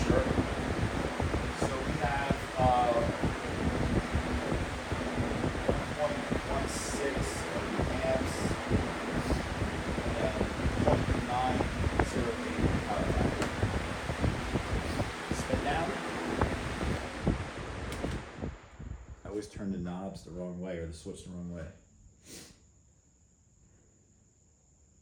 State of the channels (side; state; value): both; identical; correlation 1.00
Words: sure. So we have 0.16 amps and 0.908 power factor. Spin down. always turn the knobs the wrong way or the switch the wrong way.